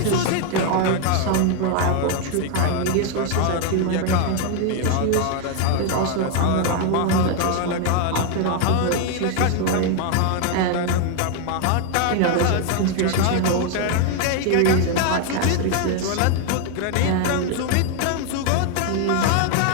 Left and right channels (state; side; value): different; both; correlation 0.01